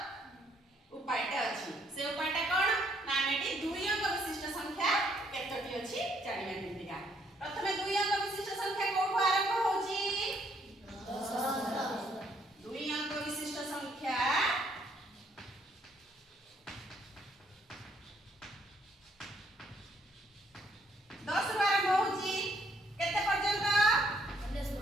उपायटा अछि से उपायटा कोन ना मेटी दुई अंक विशिष्ट संख्या केतोटी अछि जानिबा केतिका प्रथमे दुई अंक विशिष्ट संख्या कोठो आरंभ होची 10 दुई अंक विशिष्ट संख्या 10 रु आरंभ होची केते पर्यंत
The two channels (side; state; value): both; normal; correlation 0.68